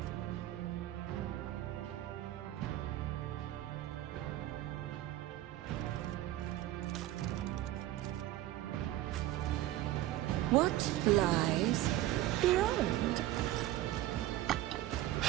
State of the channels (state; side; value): quieter; left; 14.7 dB